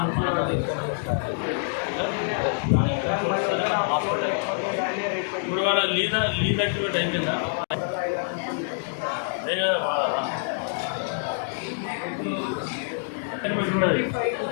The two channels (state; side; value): silent; right; digital silence